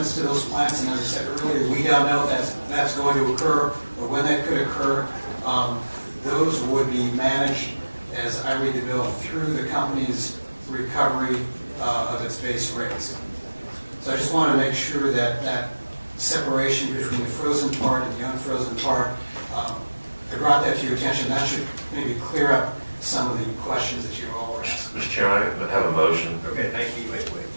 to those plants, and as I said earlier, we don't know if that's going to occur or when that could occur. Those would be managed, as I read the bill, through the company's recovery of its base rates. So I just want to make sure that that separation between the frozen part and the unfrozen part, I brought that to your attention. That should maybe clear up some of the questions that you all were asking. Mr. Chairman, I have a motion. Okay, thank you. Wait.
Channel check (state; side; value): inverted; both; correlation -1.00